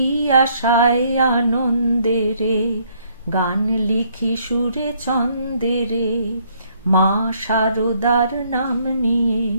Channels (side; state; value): both; inverted; correlation -0.68